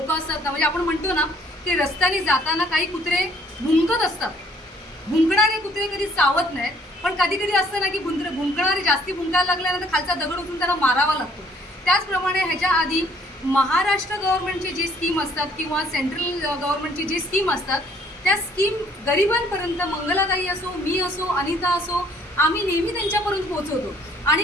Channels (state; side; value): normal; both; correlation 0.61